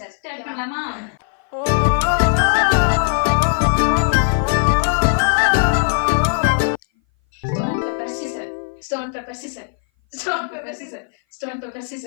ஸ்டார்ட் பண்ணலாமா? Stone pepper scissor. Stone pepper scissor. Stone pepper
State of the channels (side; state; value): right; silent; 59 dB below the other